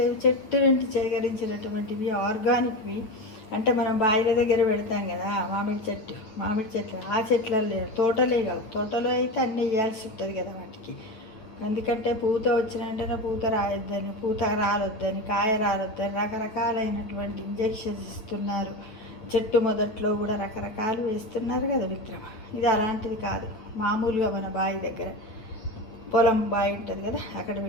చెట్టు నుండి సేకరించినటువంటివి, ఆర్గానిక్వి. అంటే మనం బాయిల దగ్గర పెడతాం కదా, మామిడి చెట్లు. ఆ చెట్లలో లేదు, తోటలే కావు. తోటలో అయితే అన్నీ వేయాల్సి ఉంటుంది కదా వాటికి. ఎందుకంటే పూత వచ్చినంటేనే పూత రాయొద్దని, పూత రాలొద్దని, కాయ రాలొద్దని రకరకాలైనటువంటి ఇంజెక్షన్స్ ఇస్తున్నారు. చెట్టు మొదట్లో కూడా రకరకాలు వేస్తున్నారు కదా మిత్రమ. ఇది అలాంటిది కాదు. మామూలుగా మన బావి దగ్గర పొలం బావి ఉంటుంది కదా, అక్కడ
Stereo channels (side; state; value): right; late; 9.0 ms